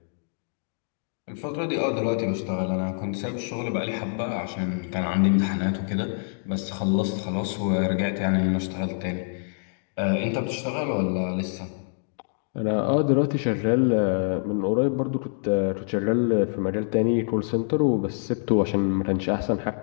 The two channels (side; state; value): right; silent; digital silence